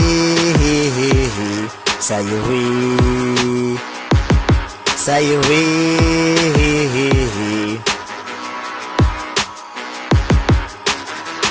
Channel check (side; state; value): both; identical; correlation 1.00